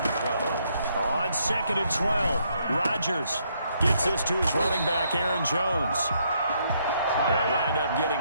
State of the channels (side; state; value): both; inverted; correlation -0.73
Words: On 2nd and 12, Rodgers gets this to his running back, Aaron Jones. They'll wind up